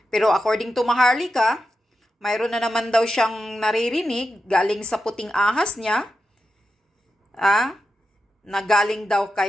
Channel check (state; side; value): normal; both; correlation 0.88